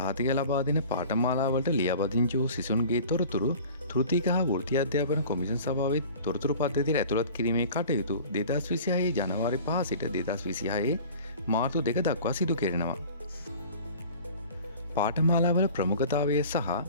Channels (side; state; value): both; inverted; correlation -0.44